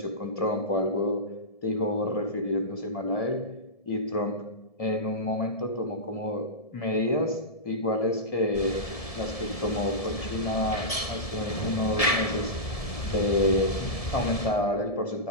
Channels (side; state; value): right; late; 1.7 ms